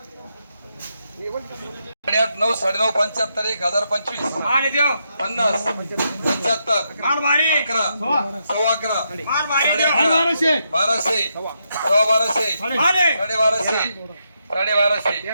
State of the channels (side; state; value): both; inverted; correlation -0.81